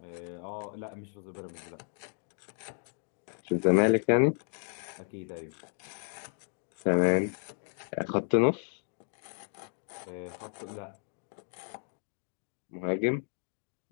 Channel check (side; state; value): right; silent; 56 dB below the other